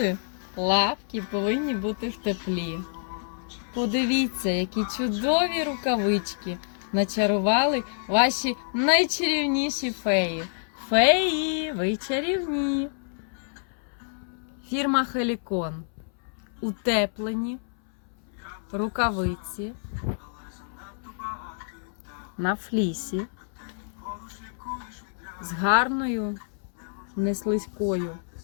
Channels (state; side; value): silent; right; 60 dB below the other